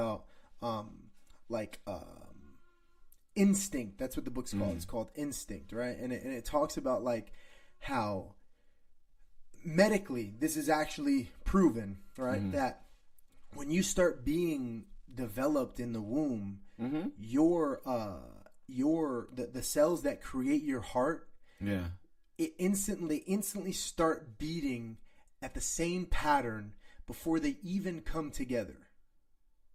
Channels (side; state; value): both; identical; correlation 1.00